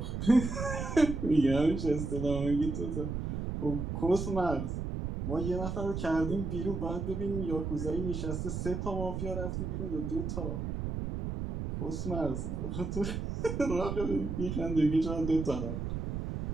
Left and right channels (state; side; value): noise; right; rumble, 3 dB below the sound